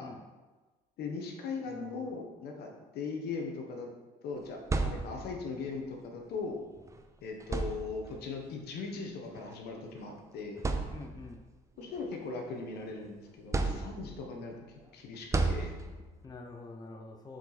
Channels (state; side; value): normal; both; correlation 0.62